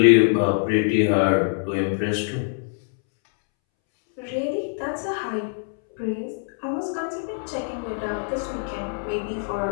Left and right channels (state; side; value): silent; right; 63 dB below the other